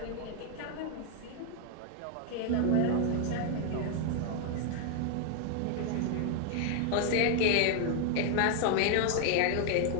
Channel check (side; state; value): both; different; correlation 0.00